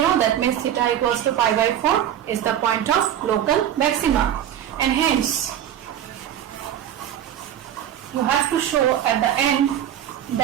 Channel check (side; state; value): left; quieter; 10.5 dB